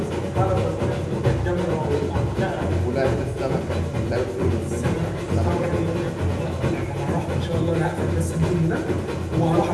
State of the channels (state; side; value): identical; both; correlation 1.00